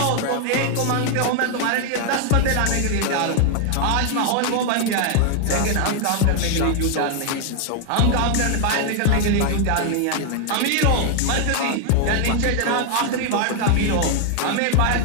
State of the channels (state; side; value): different; both; correlation 0.00